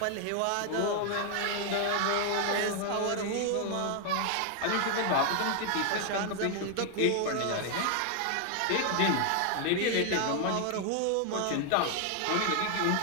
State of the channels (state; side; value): different; both; correlation 0.00